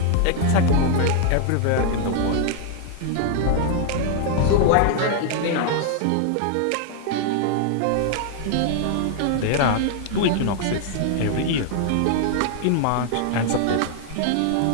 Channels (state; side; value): different; both; correlation 0.00